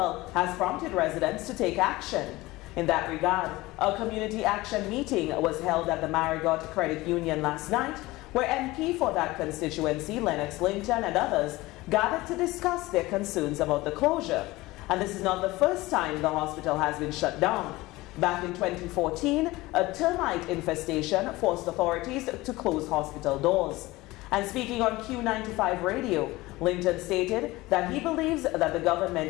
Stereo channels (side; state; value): right; quieter; 19.8 dB